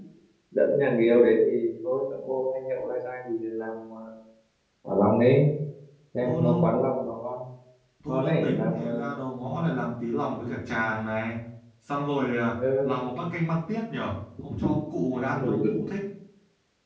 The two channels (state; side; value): identical; both; correlation 1.00